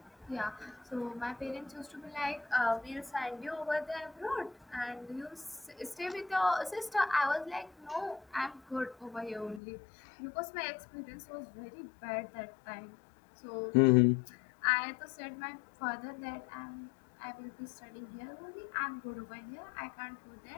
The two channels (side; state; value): right; drops out; at 9.6 s